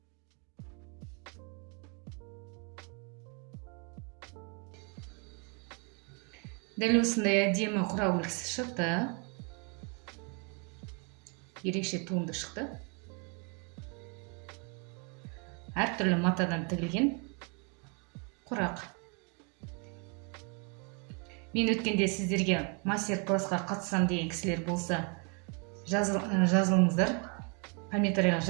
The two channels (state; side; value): quieter; left; 33.0 dB